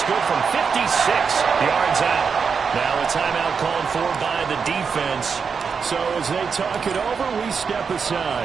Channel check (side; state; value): left; quieter; 5.9 dB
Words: good from 56 yards out. Now a a timeout called for by the defense. So as they talk it over, we step